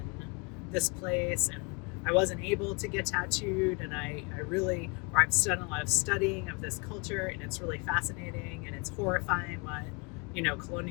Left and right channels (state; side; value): quieter; right; 31.3 dB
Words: this place and I wasn't able to get tattooed, and I've done a lot of studying of this culture, and it's really fascinating, and it's horrifying what,